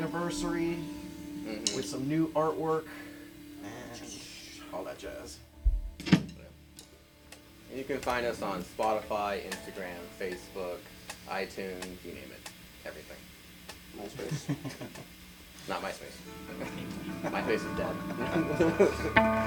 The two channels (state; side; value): identical; both; correlation 1.00